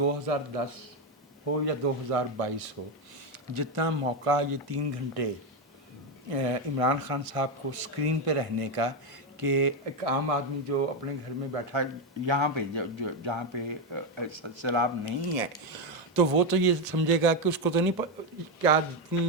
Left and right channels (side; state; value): both; normal; correlation 0.08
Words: हो या 2022 हो, जितना मौका ये 3 घंटे इमरान खान साहब को स्क्रीन पे रहने का, कि एक आम आदमी जो अपने घर में बैठा यहाँ पे जहाँ पे सैलाब नहीं है, तो वो तो ये समझेगा कि उसको तो नहीं क्या